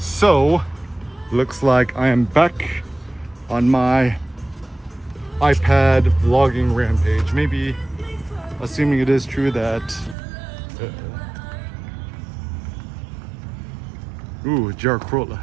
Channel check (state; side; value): drops out; left; at 10.2 s